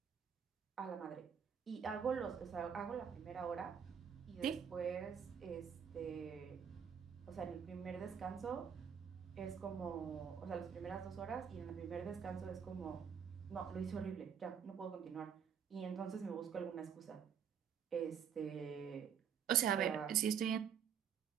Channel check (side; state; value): left; quieter; 7.6 dB